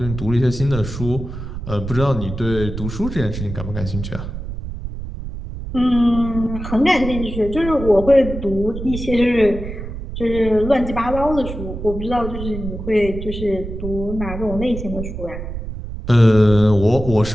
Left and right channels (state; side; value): noise; right; rumble, 8 dB below the sound